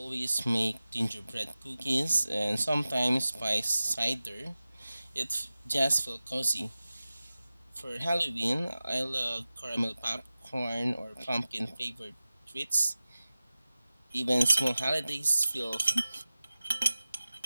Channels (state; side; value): inverted; both; correlation -0.96